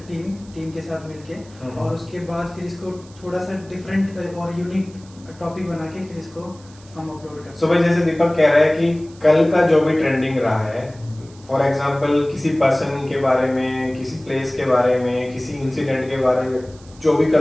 टीम के साथ मिलके, और उसके बाद फिर इसको थोड़ा सा डिफरेंट और यूनिक टॉपिक बना के फिर इसको हम अपलोड करते हैं। सो भाई जैसे दीपक कह रहा है कि कल का जो भी ट्रेंडिंग रहा है, फॉर एग्जांपल किसी पर्सन के बारे में, किसी प्लेस के बारे में, किसी इंसिडेंट के बारे में, जो भी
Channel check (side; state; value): right; noise; hiss, 25 dB below the sound